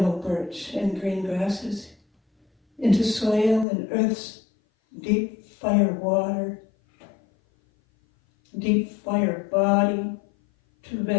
birch and green grasses, into soil and earth's deep fire water, deep fire body, to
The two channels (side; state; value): right; drops out; at 3.7 s